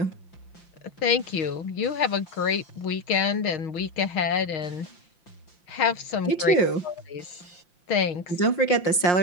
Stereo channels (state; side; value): late; right; 5.6 ms